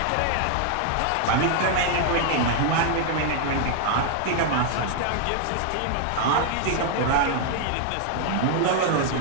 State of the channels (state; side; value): different; both; correlation 0.00